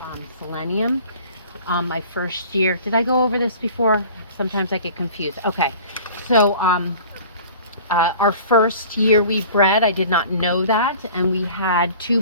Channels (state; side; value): inverted; both; correlation -0.45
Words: selenium. My first year, did I go over this before? Sometimes I get confused. Okay, so our first year we bred, I did not know that, and we had 2